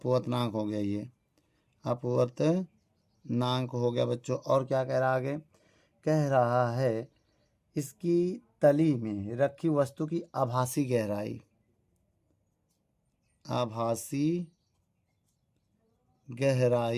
हो गया। ये अपवर्तनांक हो गया बच्चों। और क्या कह रहा है आगे? कह रहा है इसकी तली में रखी वस्तु की आभासी गहराई, आभासी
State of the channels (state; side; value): identical; both; correlation 1.00